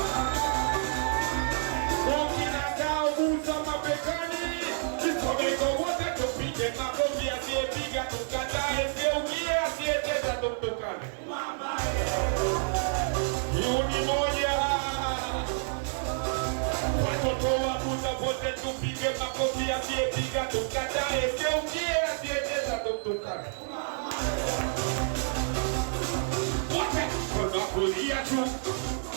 Kukinakao busa mabegani. Isomeko wote tupige makofi asiyepiga tukata ukie asiyecheza tukane. Yuni moja. Watoto wa busa wote tupige makofi asiyepiga tukata ukie asiyecheza tukane. Wote kulia tu,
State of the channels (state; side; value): silent; left; 59 dB below the other